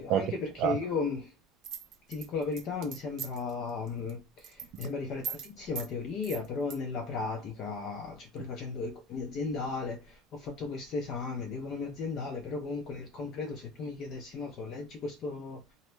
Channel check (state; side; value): normal; both; correlation 0.37